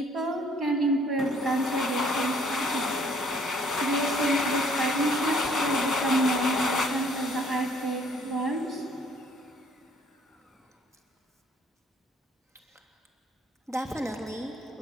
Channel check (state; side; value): normal; both; correlation 0.60